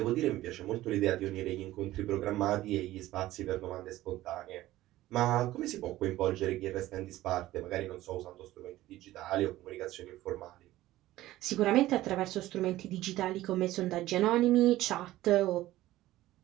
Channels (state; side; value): quieter; left; 15.8 dB